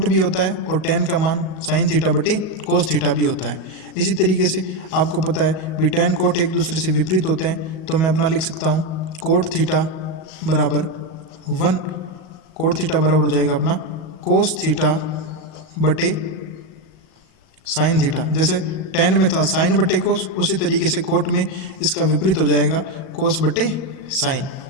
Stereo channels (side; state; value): right; late; 37 ms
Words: भी होता है और टेन का मान साइन थीटा बटे कोस थीटा भी होता है। इसी तरीके से आपको पता है भी टेन कोट एक दूसरे से विपरीत होते हैं, तो मैं अपना लिख सकता हूँ कोट थीटा बराबर 1 कोट थीटा बराबर हो जाएगा अपना कोस थीटा बटे साइन थीटा। जैसे टेन में था साइन बटे कोस, उसी तरीके से कोट में इसका विपरीत हो जाएगा कोस बटे साइन।